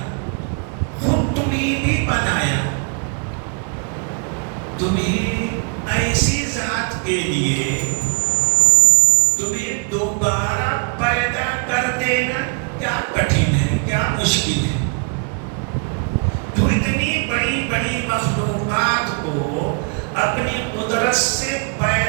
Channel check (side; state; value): left; quieter; 38.3 dB